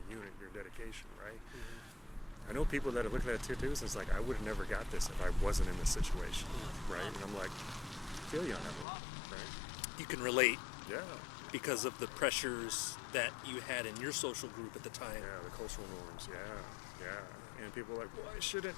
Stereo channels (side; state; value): right; drops out; at 8.8 s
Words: the unit, your dedication, right? I know people that are looking at tattoos and it's like, I would have never got this if I wasn't in this situation, right? And I'm like, I feel you on that one, right? You can relate Yeah. because of the pressures that you had in your social group at the time. Yeah, the cultural norms, yeah. And people are like, well, I shouldn't.